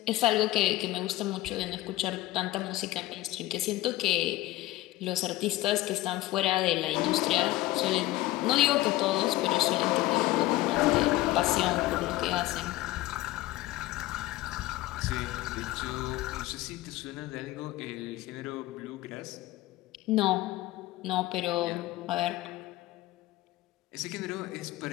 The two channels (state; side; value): quieter; right; 17.3 dB